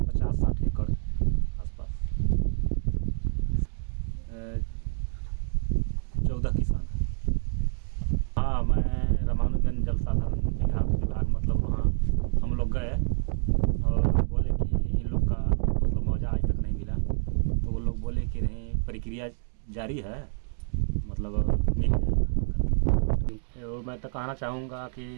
50-60 एकड़ आसपास 14 किसान। हाँ, मैं रामानुजगंज जल संसाधन विभाग मतलब वहाँ हम लोग गए और बोले कि इन लोग का मतलब मुआवजा आज तक नहीं मिला। तो वो लोग बोले कि नहीं, प्रक्रिया जारी है, मतलब मिल जाएगा। और मैं तो कहना चाहूँगा कि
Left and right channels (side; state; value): left; silent; digital silence